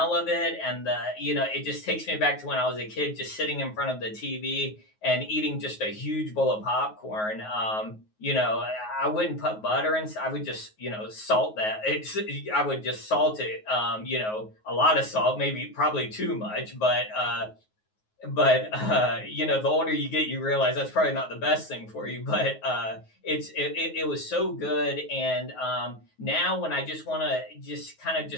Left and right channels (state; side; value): late; right; 9.4 ms